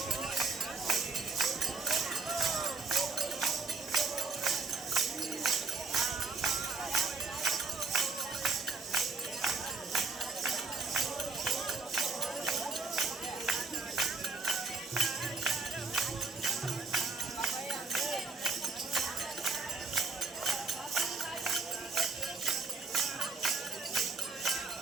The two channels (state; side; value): quieter; left; 4.2 dB